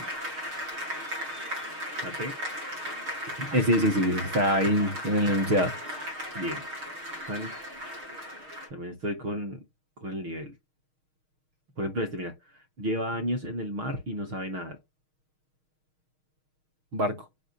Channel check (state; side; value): late; left; 6.4 ms